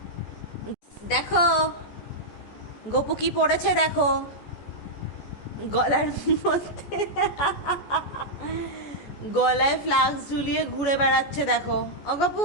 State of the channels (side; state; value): right; late; 14 ms